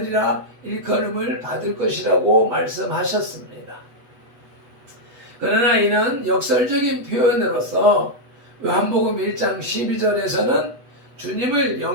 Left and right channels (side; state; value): left; late; 8.2 ms